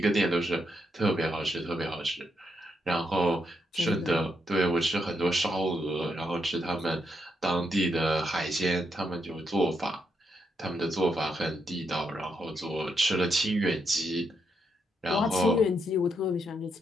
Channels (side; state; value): both; normal; correlation 0.79